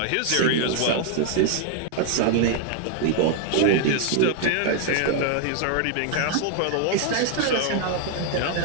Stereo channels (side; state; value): both; different; correlation 0.00